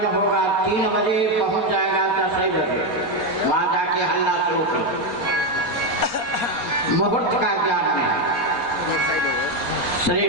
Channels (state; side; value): late; right; 4.3 ms